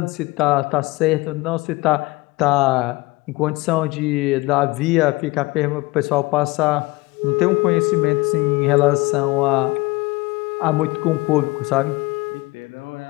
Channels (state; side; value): quieter; right; 22.5 dB